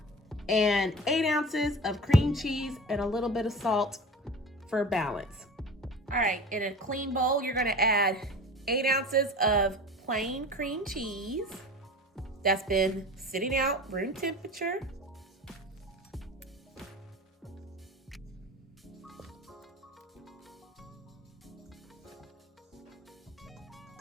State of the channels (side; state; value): both; normal; correlation 0.36